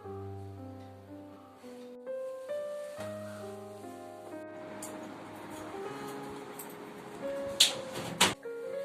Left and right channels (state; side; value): identical; both; correlation 1.00